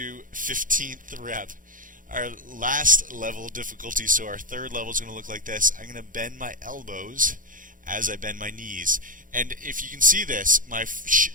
15th rep. Our last level of difficulty, so our third level is going to look like this. I'm going to bend my elbows as I bend my knees. And if you can see this, my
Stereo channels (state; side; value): late; left; 0.39 ms